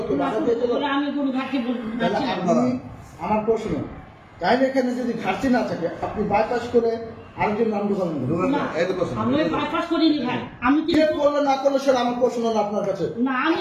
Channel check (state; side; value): identical; both; correlation 1.00